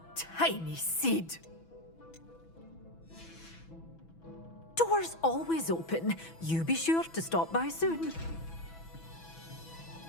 tiny seed. Doors always open. You be sure to stop by soon.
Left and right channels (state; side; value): late; right; 6.1 ms